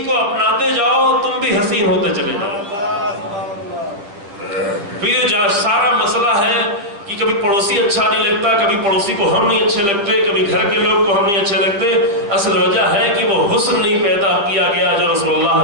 کو اپناتے جاؤ، تم بھی حسین ہوتے چلے جاؤ۔ پھر جو سارا مسئلہ ہے کہ کبھی پڑوسی اچھا نہیں لگتا، کبھی پڑوسی کو ہم نہیں اچھے لگتے، کبھی گھر کے لوگ کو ہم نہیں اچھے لگتے، اصل وجہ ہے کہ وہ حسن نہیں پیدا کیا گیا جو رسول اللہ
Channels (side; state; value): left; late; 10 ms